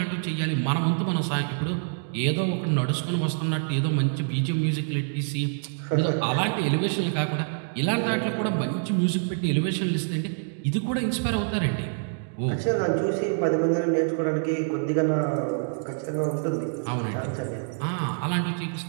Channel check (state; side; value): silent; left; digital silence